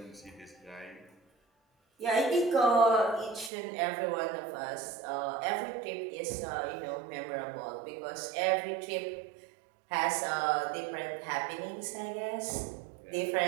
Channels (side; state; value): left; drops out; at 3.5 s